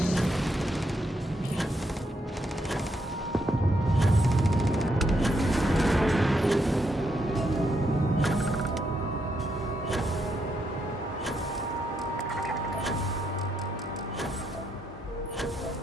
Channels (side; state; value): both; normal; correlation 0.78